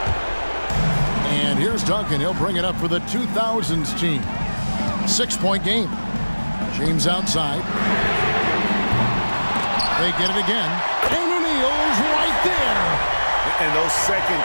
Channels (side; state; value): both; inverted; correlation -1.00